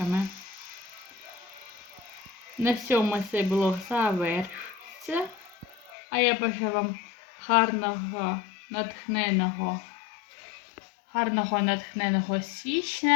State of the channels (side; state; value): right; drops out; at 5.9 s